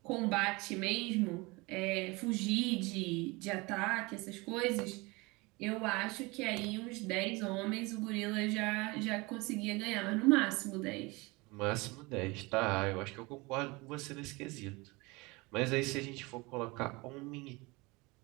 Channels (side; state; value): left; quieter; 24.7 dB